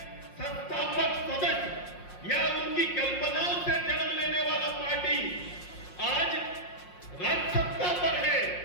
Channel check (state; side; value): late; right; 5.6 ms